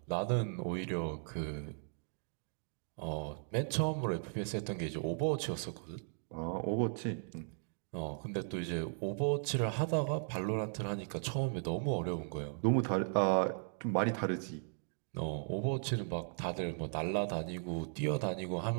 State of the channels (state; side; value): silent; left; digital silence